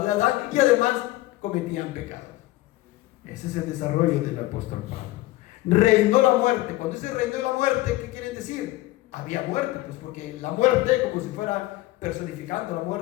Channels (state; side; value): quieter; right; 17.8 dB